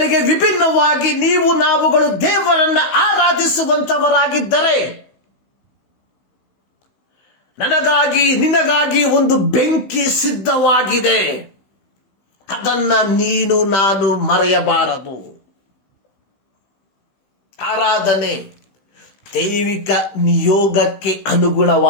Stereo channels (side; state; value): right; late; 16 ms